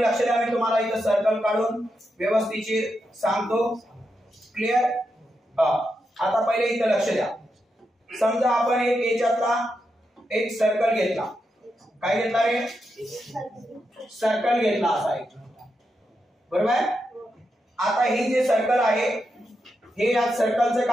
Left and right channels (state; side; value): normal; both; correlation 0.85